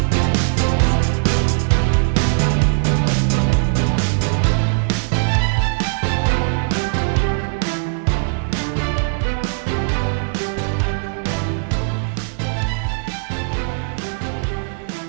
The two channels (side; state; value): left; silent; 65 dB below the other